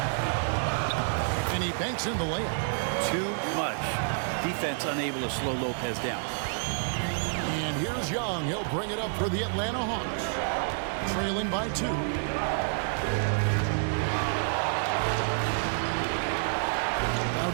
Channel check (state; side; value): silent; left; digital silence